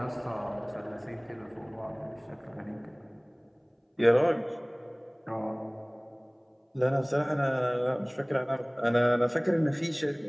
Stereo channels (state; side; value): identical; both; correlation 1.00